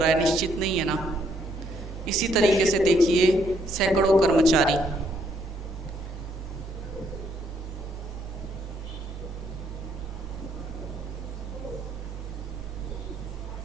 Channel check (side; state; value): both; normal; correlation 0.70